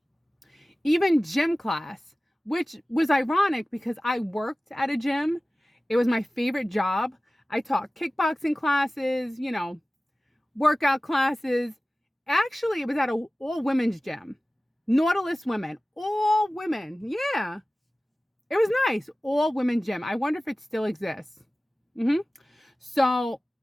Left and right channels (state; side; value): normal; both; correlation 0.97